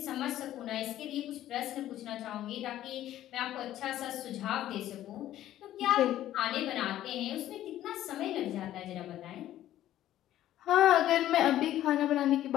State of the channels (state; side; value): quieter; right; 13.0 dB